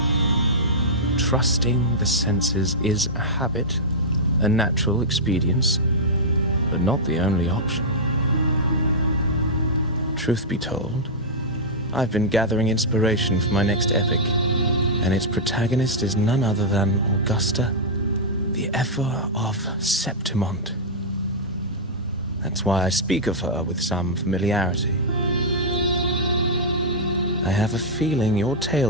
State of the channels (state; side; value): normal; both; correlation -0.09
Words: Trusting the senses is a habit, a natural expedience, but not the only option. Truth be told, I've been gathering inspiration for my next epic, and its protagonist is none other than Augusta, the Epher of Septimont. That's why I speak of her with some familiarity. I have a feeling your